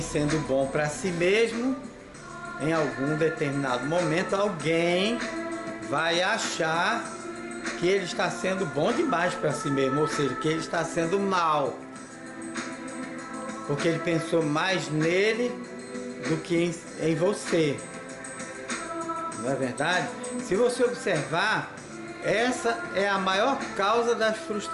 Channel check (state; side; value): identical; both; correlation 1.00